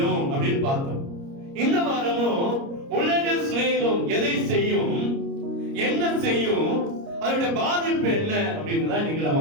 அப்படின்னு பார்த்தோம். இந்த வாரமும் உலக சிநேகம் எதை செய்யும், என்ன செய்யும், அதனுடைய பாதிப்பு என்ன அப்படின்னு தான் இன்னைக்கு நம்ம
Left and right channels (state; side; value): late; left; 29 ms